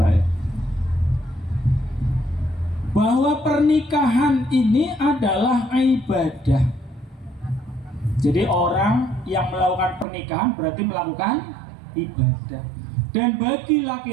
bahwa pernikahan ini adalah ibadah. Jadi orang yang melakukan pernikahan berarti melakukan ibadah. Dan bagi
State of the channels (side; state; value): left; drops out; at 10.1 s